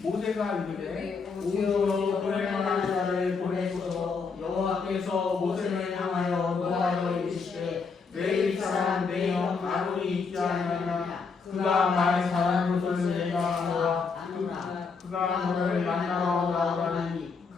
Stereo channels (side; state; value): right; quieter; 5.0 dB